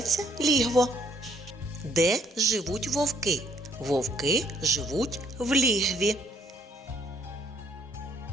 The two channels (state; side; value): normal; both; correlation 0.65